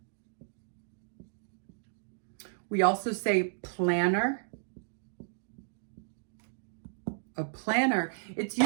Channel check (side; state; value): left; silent; digital silence